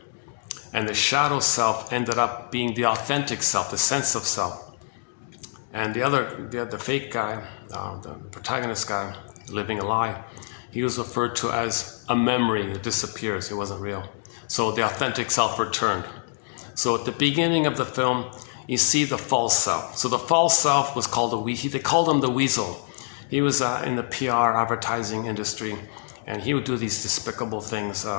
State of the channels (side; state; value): right; silent; digital silence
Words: And the shadow self ended up being the authentic self, the sense of self. And the fake guy, the protagonist guy, living a lie, he was referred to as a memory that disappears. It wasn't real. So the authentic self returned. So at the beginning of the film, you see the false self. So the false self was called they called him the weasel. He was in the PR advertising industry, and he would do these despicable things